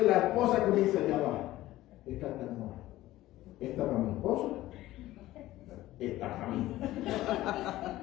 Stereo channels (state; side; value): quieter; right; 16.0 dB